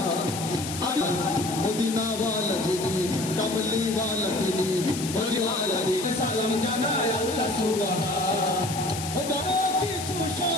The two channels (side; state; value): left; noise; hiss, 8 dB below the sound